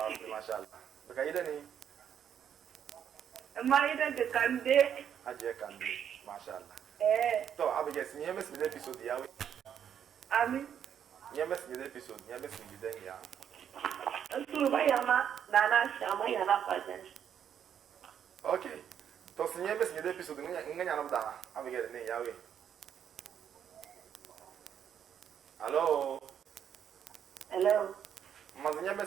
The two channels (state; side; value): quieter; left; 8.8 dB